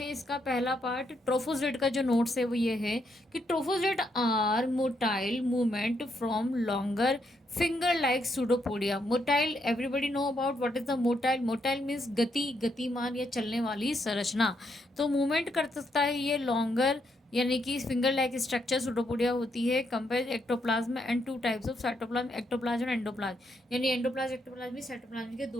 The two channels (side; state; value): both; normal; correlation 0.77